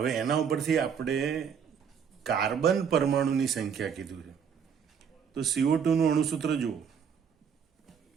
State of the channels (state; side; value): quieter; left; 7.2 dB